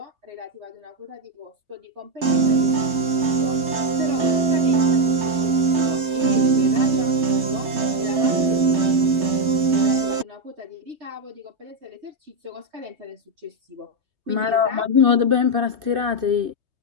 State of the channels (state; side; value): late; left; 3.2 ms